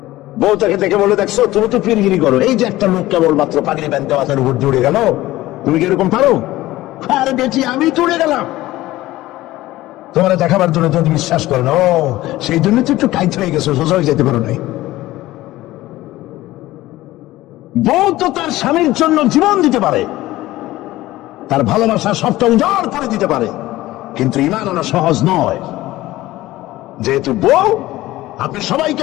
বউ তাকে দেখে বলে, দেখছো তুমি তো পীরগিরি করো, এই যে একটা লোক কেবল মাত্র পাগড়ি বাঁধতে মাথার উপর জুড়ে গেল, তুমি কি এরকম পারো? আরে বেটি, আমি তো উড়ে গেলাম। তোমার দেখাবার জন্য তুমি বিশ্বাস করো না, ও সেই জন্য তো একটু কাইত হয়ে গেছো, সোজা হয়ে যেতে পারো নাই। বউ তো তার স্বামীর জন্য জীবন দিতে পারে, তার ভালোবাসা সবটা উজাড় করে দিতে পারে, কিন্তু ঈমান আনা সহজ নয়। যেহেতু বউ, আপনি সবাইকে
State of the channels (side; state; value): right; quieter; 16.8 dB